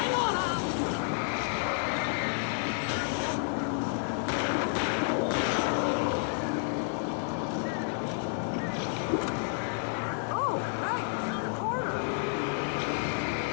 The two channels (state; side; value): silent; right; 58 dB below the other